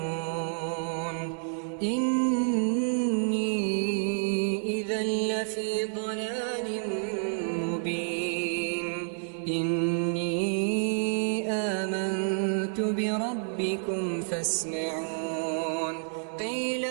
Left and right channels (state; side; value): silent; left; digital silence